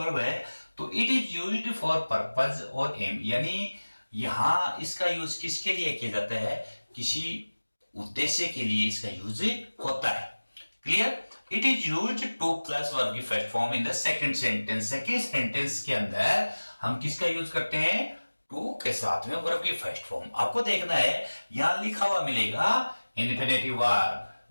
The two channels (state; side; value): inverted; both; correlation -1.00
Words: है तो it is used for purpose और एम, यानी यहां इसका यूज किसके लिए किया जाता है, किसी उद्देश्य के लिए इसका यूज होता है। Clear? It is used to plus verb की first form in the second sentence. Second sentence के अंदर हम किसका यूज करते हैं, टू के साथ में वर्ब की फर्स्ट फॉर्म। आपको देखना है यहां लिखा हुआ मिलेगा इन्फिनेटिव वर्ब,